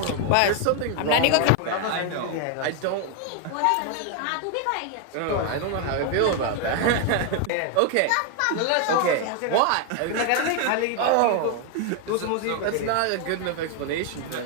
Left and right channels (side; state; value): both; different; correlation 0.00